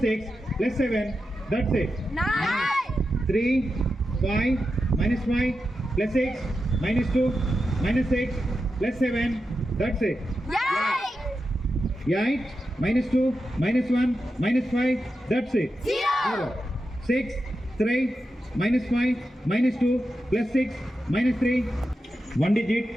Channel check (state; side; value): normal; both; correlation 0.89